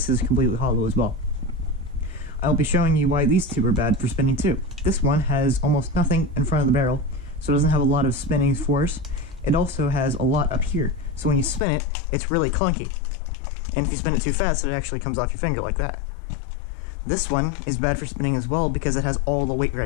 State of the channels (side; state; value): right; drops out; at 11.6 s